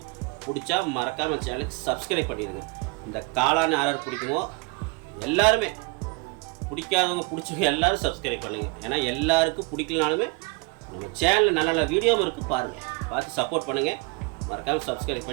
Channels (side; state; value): left; quieter; 28.4 dB